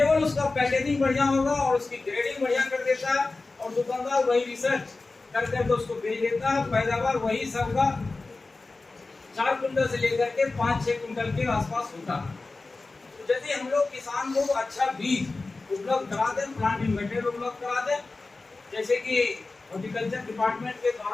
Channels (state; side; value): quieter; right; 3.6 dB